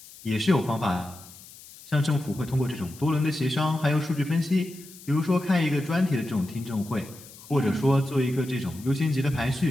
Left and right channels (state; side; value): noise; left; hiss, 19 dB below the sound